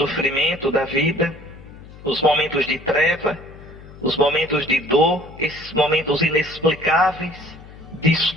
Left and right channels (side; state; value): left; noise; hum, 18 dB below the sound